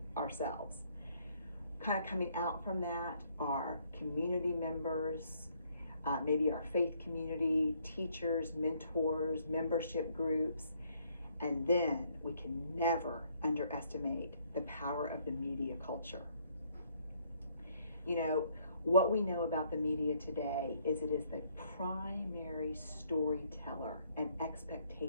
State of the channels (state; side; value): inverted; both; correlation -0.67